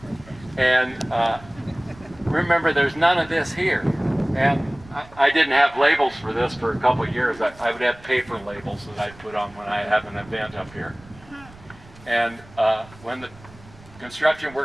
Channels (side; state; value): right; noise; rumble, 22 dB below the sound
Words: And remember, there's none of this here. And I didn't have labels for this for a couple of years. I would have paper labels that I'd put on when I have an event up here. And when the construction